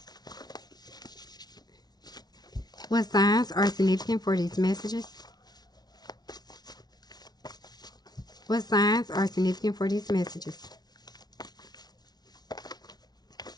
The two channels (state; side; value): late; right; 0.19 ms